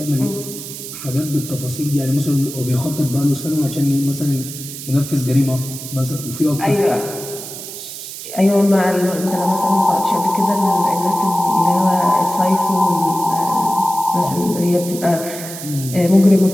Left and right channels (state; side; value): noise; right; hiss, 10 dB below the sound